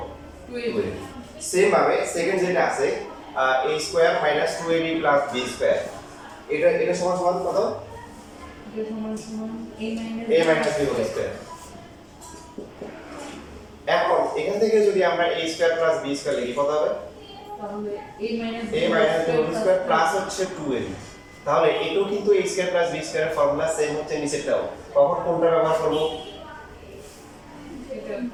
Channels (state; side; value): identical; both; correlation 1.00